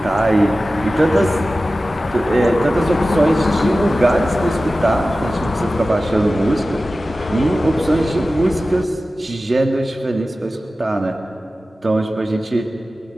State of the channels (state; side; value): normal; both; correlation 0.95